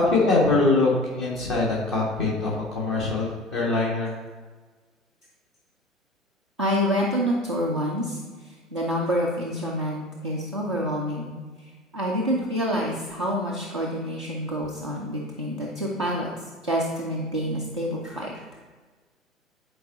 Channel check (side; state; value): both; normal; correlation 0.35